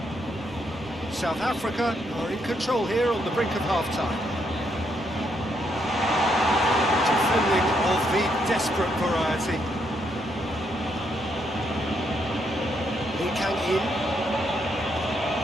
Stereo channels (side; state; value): both; normal; correlation 0.76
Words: South Africa are in control here on the brink of half-time. Defending of the desperate variety. Lee Kang in.